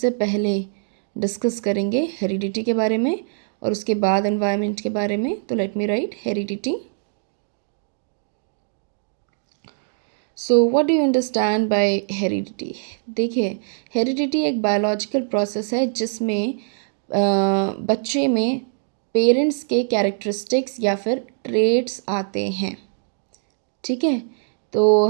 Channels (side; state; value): left; silent; digital silence